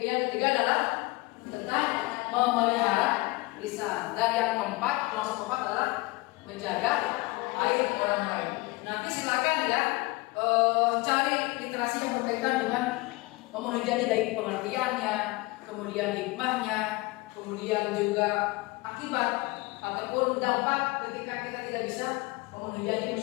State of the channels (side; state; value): right; quieter; 22.9 dB